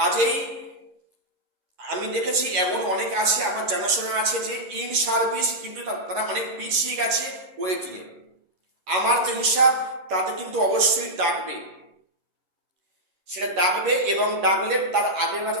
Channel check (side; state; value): left; late; 11 ms